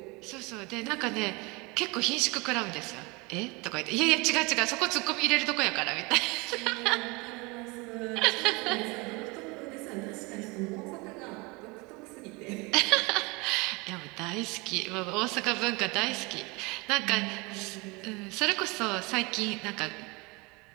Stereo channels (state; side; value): quieter; left; 26.5 dB